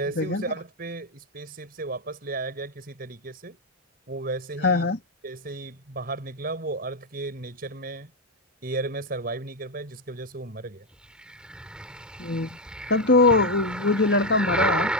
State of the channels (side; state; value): both; normal; correlation 0.06